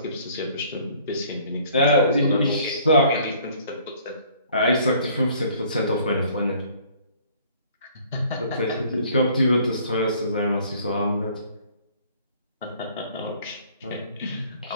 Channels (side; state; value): both; inverted; correlation -0.57